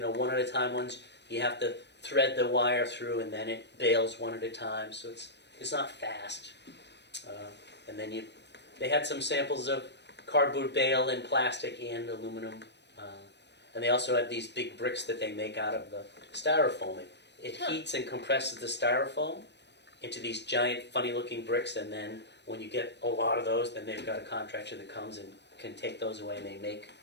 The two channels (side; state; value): right; late; 0.50 ms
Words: at a time ones, you have to thread the wire through, and then it bales 1 at a time, so it's not fast. And then they had some samples of cardboard bale and plastic and aluminum. And they also have these big bricks that they make out of the styrofoam. It heats and compresses the styrofoam into these giant, funny-looking bricks, and then when you get a lot of those, then they've got a contractor that comes and can take those away, and they make,